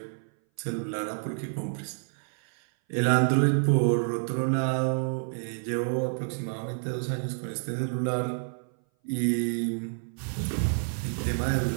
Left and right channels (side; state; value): left; silent; 58 dB below the other